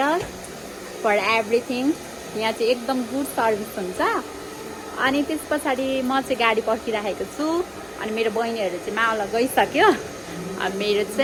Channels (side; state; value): both; identical; correlation 1.00